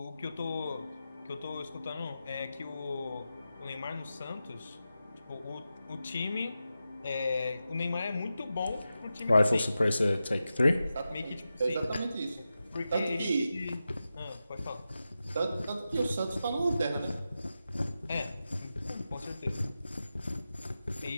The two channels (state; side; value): inverted; both; correlation -0.92